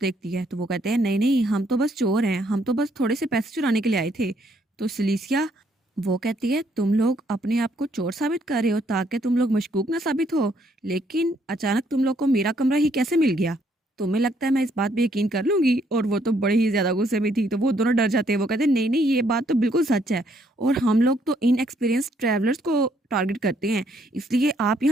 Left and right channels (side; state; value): both; normal; correlation 0.70